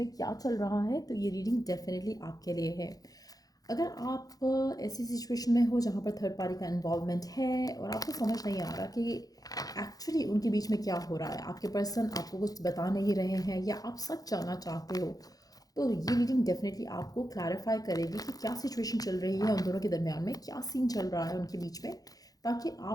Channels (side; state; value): right; late; 0.18 ms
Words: क्या चल रहा है। तो ये रीडिंग डेफिनेटली आपके लिए है। अगर आप ऐसी सिचुएशन में हो जहाँ पर थर्ड पार्टी का इन्वॉल्वमेंट है और आपको समझ नहीं आ रहा कि एक्चुअली उनके बीच में क्या हो रहा है, आपके पर्सन आपको कुछ बता नहीं रहे हैं या आप सच जानना चाहते हो, तो ये रीडिंग डेफिनेटली आपको क्लैरिफाई करेगी कि क्या सिचुएशन चल रही है उन दोनों के दरमियान में, क्या सीन चल रहा है उनके बीच में, ताकि